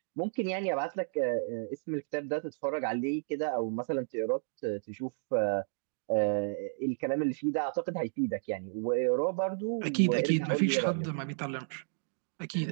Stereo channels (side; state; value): left; silent; digital silence